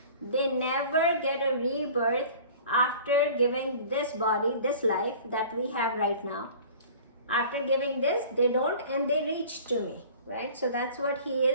they never get a rebirth after giving this body, this life that we have right now. After giving this, they don't, and they reach to me, right? So that's what he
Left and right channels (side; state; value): both; inverted; correlation -0.44